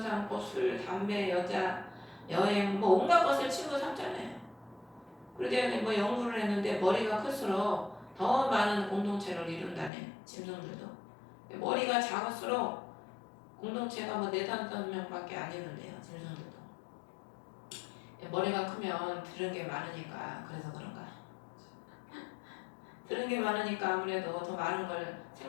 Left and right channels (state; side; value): drops out; right; at 9.9 s